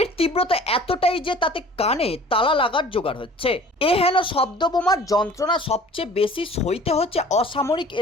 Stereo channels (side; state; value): both; normal; correlation 0.47